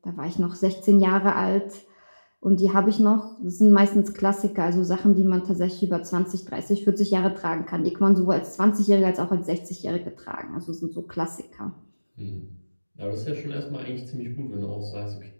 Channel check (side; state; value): both; inverted; correlation -1.00